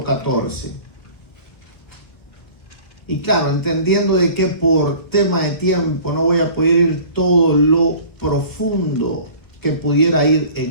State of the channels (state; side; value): late; right; 1.5 ms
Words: 14. Y claro, entendiendo de que por tema de tiempo no voy a poder ir todo lo profundo que pudiera ir